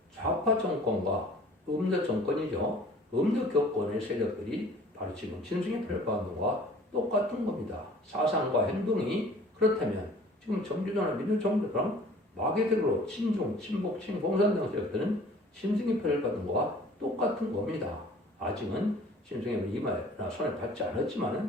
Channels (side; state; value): both; normal; correlation 0.50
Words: 좌파 정권과 음력 정권이죠. 음력 교권의 세력들이 바로 지금 짐승의 표를 받는 것과 똑같은 겁니다. 사상과 행동이 그렇다면 지금 정주조나 민주정부랑 마개들로 친중, 친복, 친공산당 세력들은 짐승의 표를 받은 것과 똑같은 겁니다. 아직은 짐승의 이마나 손에 닿지